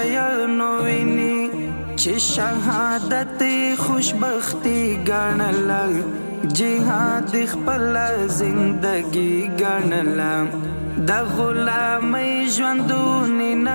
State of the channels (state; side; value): inverted; both; correlation -1.00